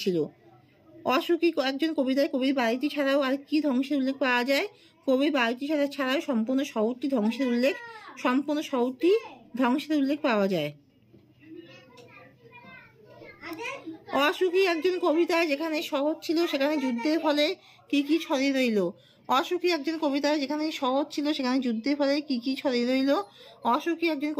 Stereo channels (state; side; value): identical; both; correlation 1.00